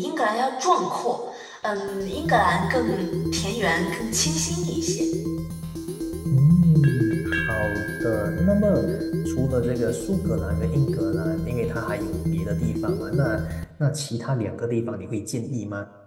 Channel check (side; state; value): both; identical; correlation 1.00